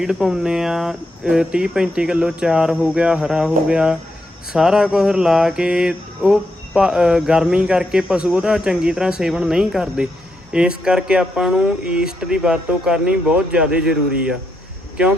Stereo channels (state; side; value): normal; both; correlation 0.81